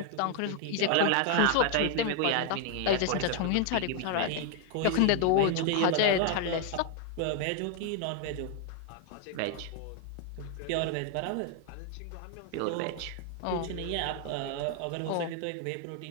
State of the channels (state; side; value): different; both; correlation 0.00